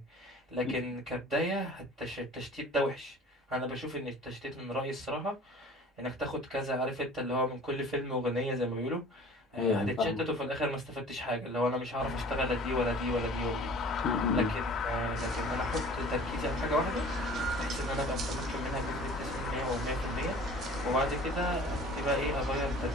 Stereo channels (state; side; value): normal; both; correlation 0.45